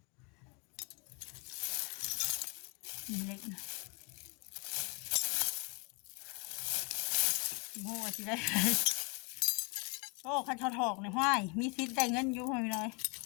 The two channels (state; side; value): quieter; right; 32.5 dB